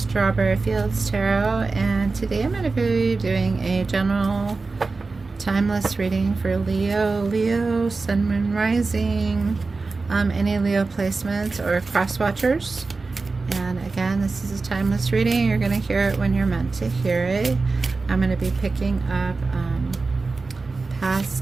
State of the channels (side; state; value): left; quieter; 3.9 dB